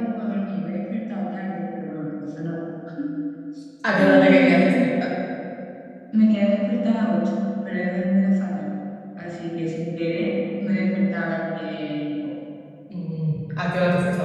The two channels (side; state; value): both; identical; correlation 1.00